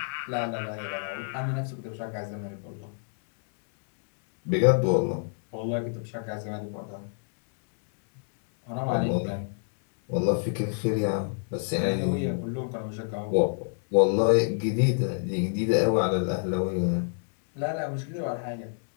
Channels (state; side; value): silent; right; digital silence